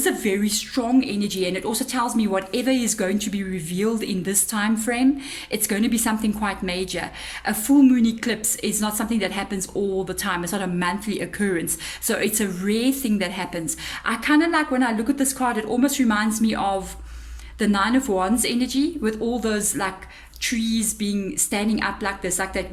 a very strong energy, and it also tells me whatever is going to be revealed in this time frame, it's going to be something quite major. A full moon eclipse is not something that happens all the time. It's not a monthly occurrence. So it's a rare thing that happens. I kind of like, when I look at this card, it almost reminds me of the Nine of Wands energy, with all those like trees standing up like this, like that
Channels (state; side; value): identical; both; correlation 1.00